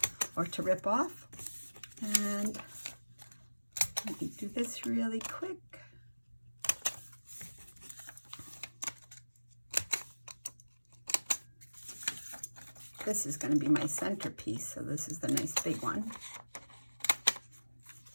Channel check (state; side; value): inverted; both; correlation -1.00